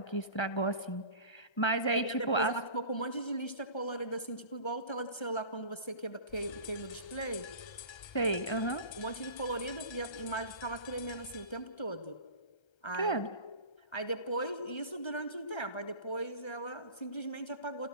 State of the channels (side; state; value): right; late; 1.3 ms